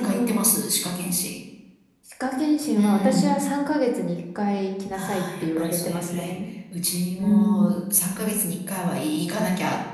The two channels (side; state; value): both; identical; correlation 1.00